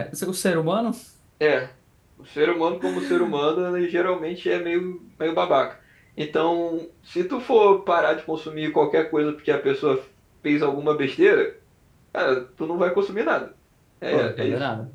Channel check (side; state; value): both; identical; correlation 1.00